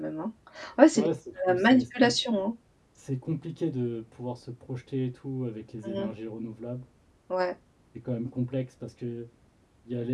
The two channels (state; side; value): identical; both; correlation 1.00